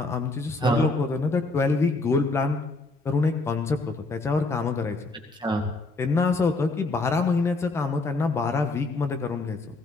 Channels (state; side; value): quieter; right; 3.3 dB